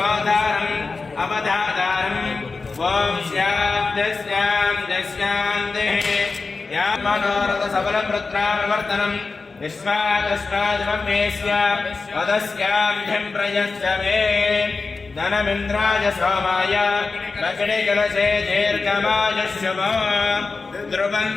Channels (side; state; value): right; quieter; 4.2 dB